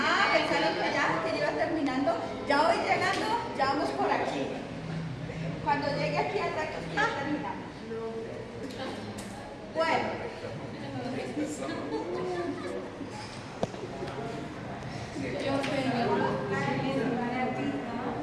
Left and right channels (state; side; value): identical; both; correlation 1.00